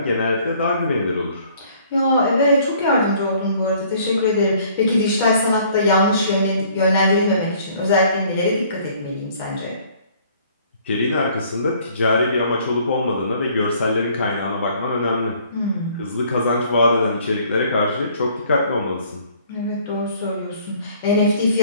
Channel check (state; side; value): inverted; both; correlation -0.58